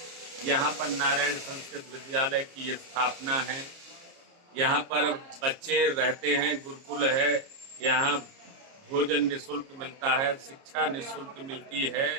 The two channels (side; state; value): left; late; 30 ms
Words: यहाँ पर नारायण संस्कृत विद्यालय की स्थापना है, यहाँ पर बच्चे रहते हैं, गुरुकुल है, यहाँ भोजन निःशुल्क मिलता है, शिक्षा निःशुल्क मिलती है,